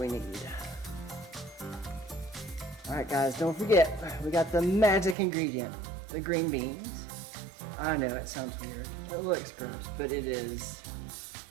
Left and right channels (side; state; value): left; drops out; at 5.2 s